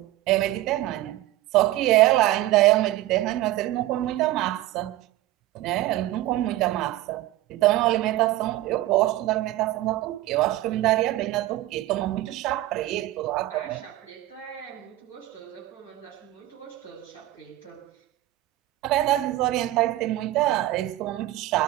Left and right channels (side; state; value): left; quieter; 15.9 dB